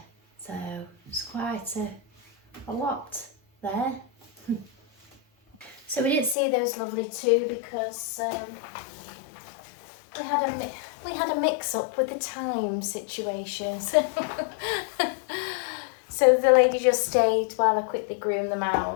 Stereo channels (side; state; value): right; drops out; at 6.4 s